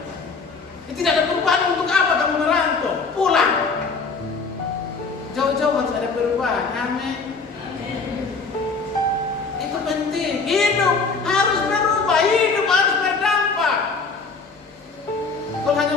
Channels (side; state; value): right; quieter; 4.5 dB